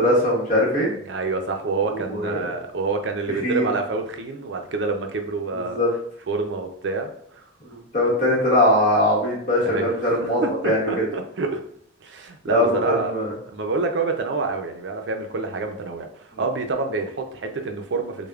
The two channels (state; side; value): normal; both; correlation 0.04